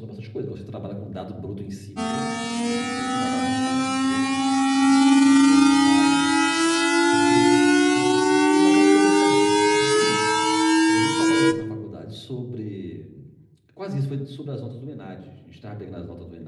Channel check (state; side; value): identical; both; correlation 1.00